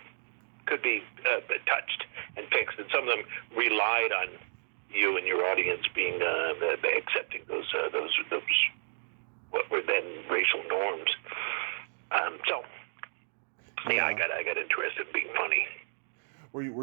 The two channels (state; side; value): silent; left; digital silence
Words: touched and fixed, and some of them relied on you and your audience being accepting those what were then racial norms. I got interested in being funny.